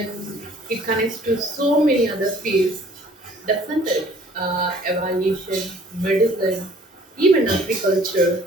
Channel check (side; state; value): both; normal; correlation 0.54